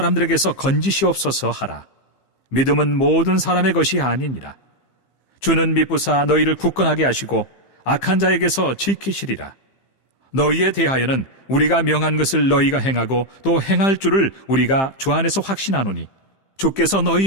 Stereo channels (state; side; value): late; right; 15 ms